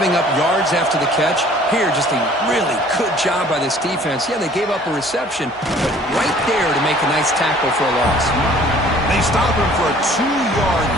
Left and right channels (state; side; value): normal; both; correlation 0.53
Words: up yards after the catch? Here, just a really good job by this defense. Yeah, they gave up a reception, but right there to make a nice tackle for a loss. They stop him for a 2-yard